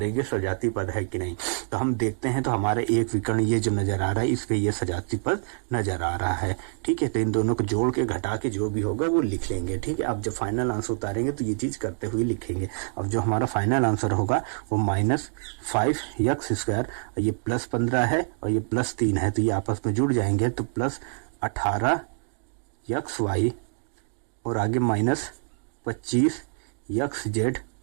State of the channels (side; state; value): left; silent; digital silence